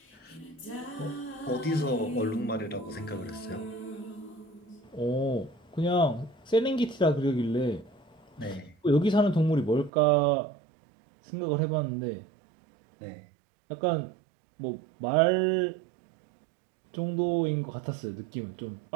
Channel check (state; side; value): drops out; left; at 9.9 s